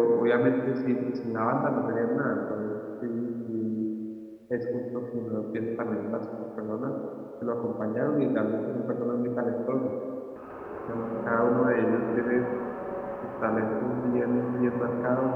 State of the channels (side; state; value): both; identical; correlation 1.00